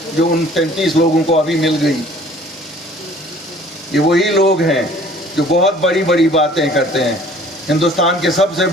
جو ان 33 لوگوں کو ابھی مل گئی۔ یہ وہی لوگ ہیں جو بہت بڑی بڑی باتیں کرتے ہیں، ہندوستان کے سب سے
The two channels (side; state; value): both; normal; correlation 0.52